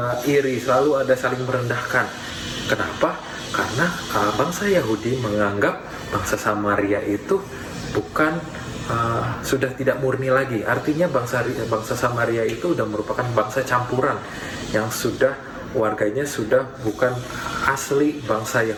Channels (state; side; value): identical; both; correlation 1.00